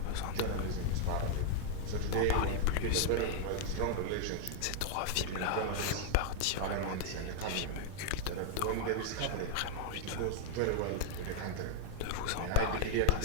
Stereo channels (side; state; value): both; different; correlation 0.00